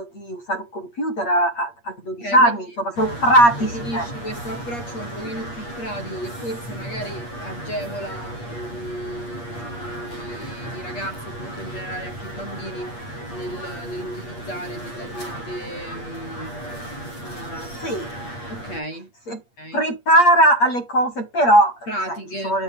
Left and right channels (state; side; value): late; right; 8.4 ms